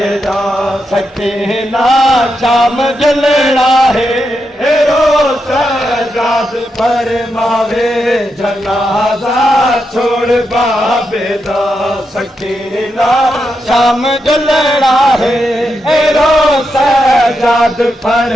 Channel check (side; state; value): both; normal; correlation 0.85